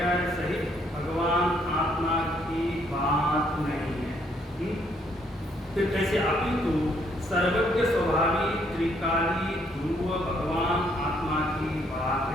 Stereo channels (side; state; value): both; normal; correlation 0.69